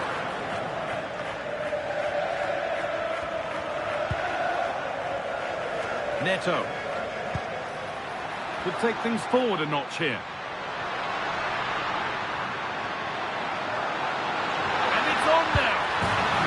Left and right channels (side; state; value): both; identical; correlation 1.00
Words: Neto. Could take things forward a notch here. And it's on now.